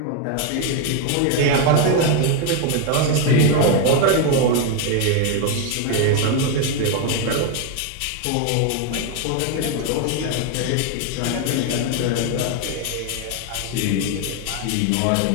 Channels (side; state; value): both; different; correlation 0.01